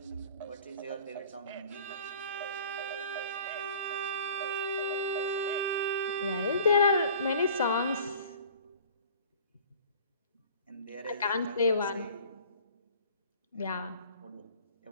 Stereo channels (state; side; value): inverted; both; correlation -0.47